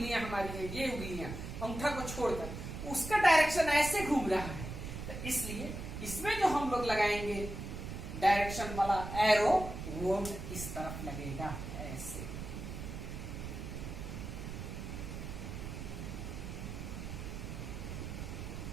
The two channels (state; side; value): noise; right; rumble, 7 dB below the sound